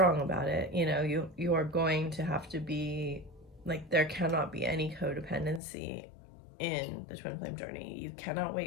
about it. You know, you are going to have to be like, there cannot be any codependency in the twin flame journey. You cannot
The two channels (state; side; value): drops out; right; at 5.6 s